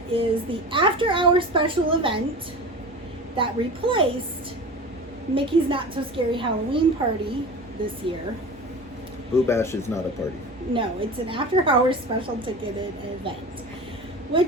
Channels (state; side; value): normal; both; correlation 0.33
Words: is the after-hour special event that replaced Mickey's Not So Scary Halloween Party this year. Oogie Bash is not a party. No, it's an after-hours special ticketed event,